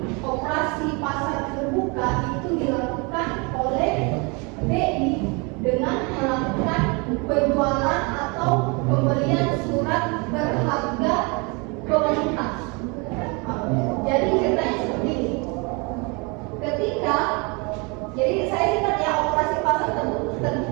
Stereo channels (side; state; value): left; quieter; 30.3 dB